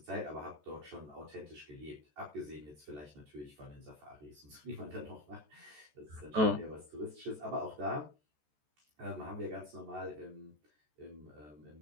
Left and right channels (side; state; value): left; late; 14 ms